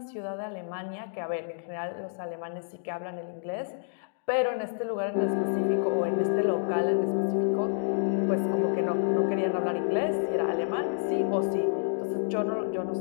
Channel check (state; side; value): silent; right; digital silence